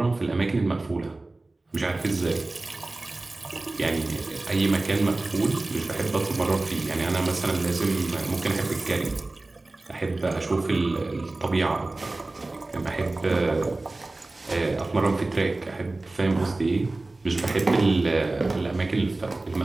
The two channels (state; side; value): quieter; left; 3.1 dB